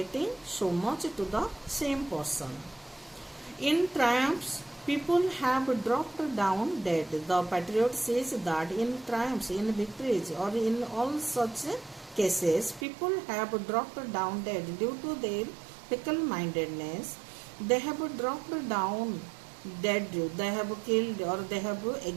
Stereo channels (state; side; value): drops out; left; at 12.9 s